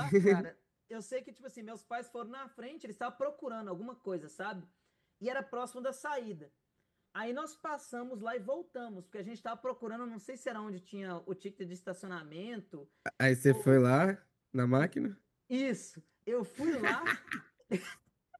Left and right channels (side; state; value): both; identical; correlation 1.00